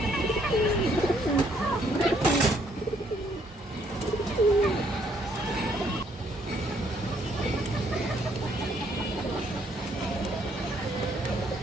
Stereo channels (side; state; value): both; normal; correlation 0.68